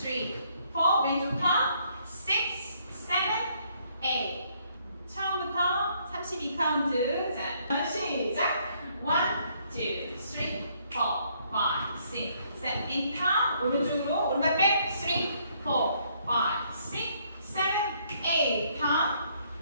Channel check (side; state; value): both; inverted; correlation -0.68